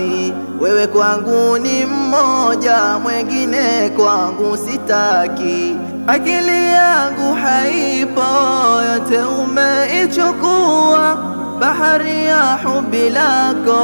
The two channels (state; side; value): inverted; both; correlation -1.00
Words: Wewe kwangu ni mmoja, mwengine kwangu sitaki. Akili yangu haipo, yote umeichukua. Bahari ya hubi